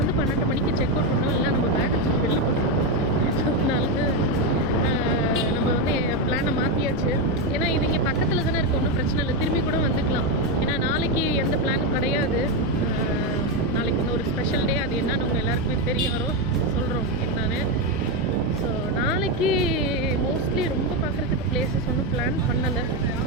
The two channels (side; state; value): both; normal; correlation 0.08